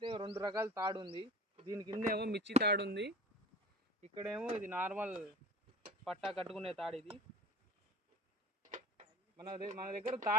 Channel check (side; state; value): both; normal; correlation 0.40